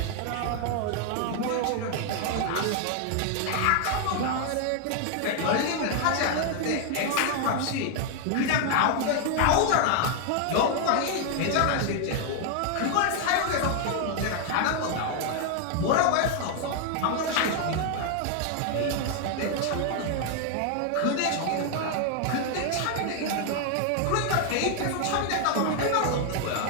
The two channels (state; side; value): different; both; correlation 0.00